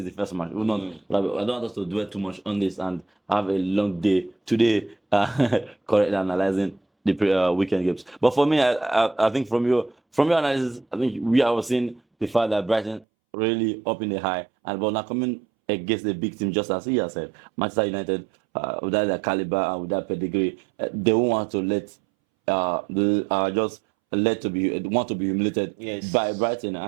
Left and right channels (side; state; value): left; drops out; at 13.1 s